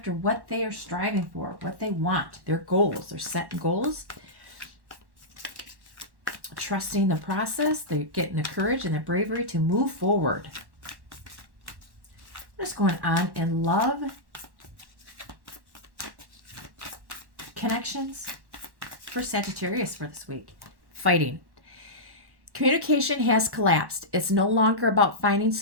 what they are striving for, what they want, their goals. They're setting goals, trusting the process. They're getting the courage and the bravery to move forward. What's going on in love? Connections for Sagittarius for this week. Fighting. Communication has collapsed. It's no longer about finding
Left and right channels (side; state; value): left; late; 1.1 ms